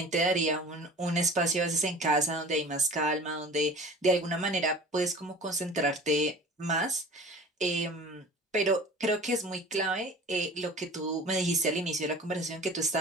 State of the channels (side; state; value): both; normal; correlation 0.41